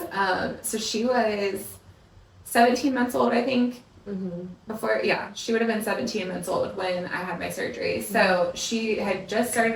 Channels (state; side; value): identical; both; correlation 1.00